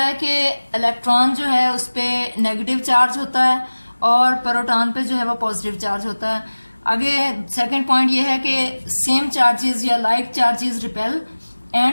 कि इलेक्ट्रॉन जो है उस पर नेगेटिव चार्ज होता है और प्रोटॉन पे जो है वो पॉजिटिव चार्ज होता है। आगे सेकंड पॉइंट ये है कि सेम चार्जेस या like charges repel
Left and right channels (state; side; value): inverted; both; correlation -1.00